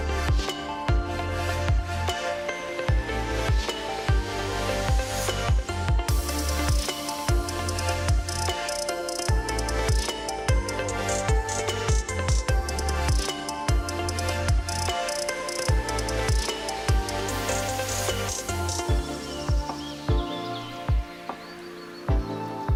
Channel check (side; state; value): both; identical; correlation 1.00